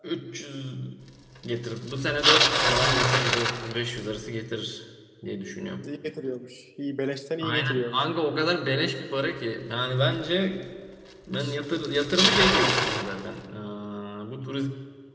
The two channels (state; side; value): identical; both; correlation 1.00